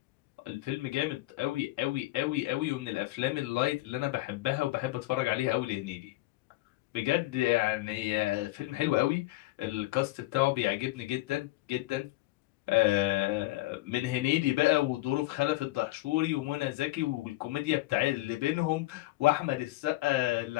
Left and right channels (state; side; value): quieter; right; 18.7 dB